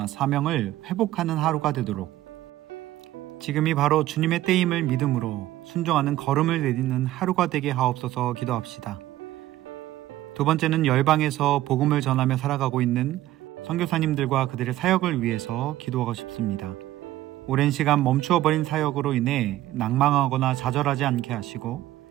사명을 회복하는 하루가 되도록 지금이 바로 주님의 때임을 믿음으로 순종하는 걸음을 내딛는 하루가 되게 하옵소서 기도합시다. 두 번째는 열방에서 복음을 전하며 살아가고 있는 선교사님들과 그들의 사역을 위해서 기도하고 싶습니다. 오랜 시간 멈추어버린 사역으로 인해 낭망하거나 좌절하지 않게 하시고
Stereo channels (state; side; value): quieter; left; 14.9 dB